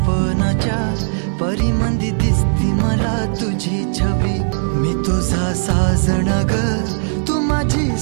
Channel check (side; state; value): left; silent; 60 dB below the other